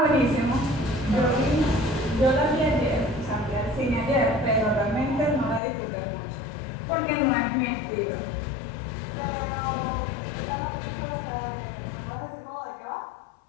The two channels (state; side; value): drops out; right; at 5.6 s